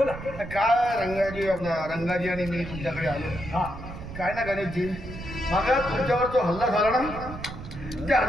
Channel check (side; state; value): right; noise; rumble, 11 dB below the sound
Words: काय रंगाजी आणि मी तुमच्याकडे आलो. काय ना गणेशजी, मग तुमच्यावर जो हल्ला झाला ना, त्या